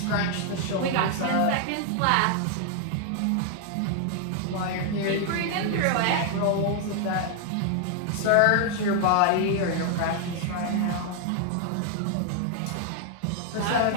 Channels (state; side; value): different; both; correlation 0.00